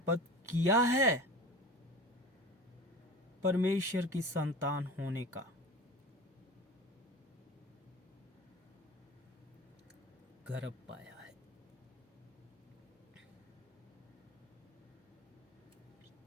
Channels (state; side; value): normal; both; correlation 0.35